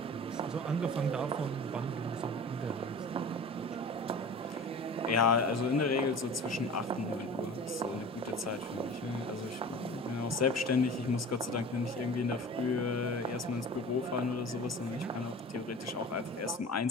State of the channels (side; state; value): both; normal; correlation 0.38